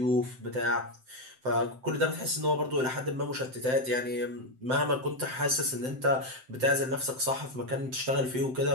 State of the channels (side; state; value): left; late; 7.8 ms